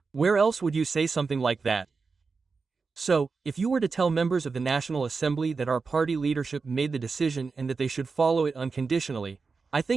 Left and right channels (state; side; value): quieter; left; 4.6 dB